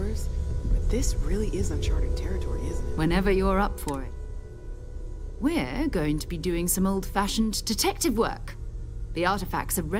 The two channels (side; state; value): both; identical; correlation 1.00